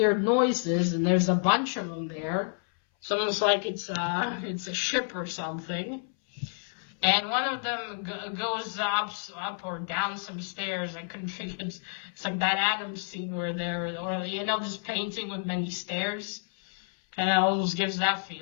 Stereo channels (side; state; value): right; silent; 58 dB below the other